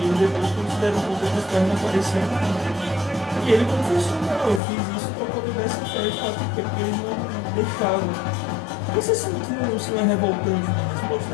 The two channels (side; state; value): right; drops out; at 4.6 s